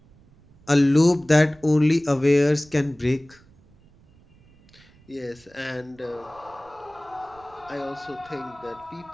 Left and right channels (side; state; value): right; noise; rumble, 28 dB below the sound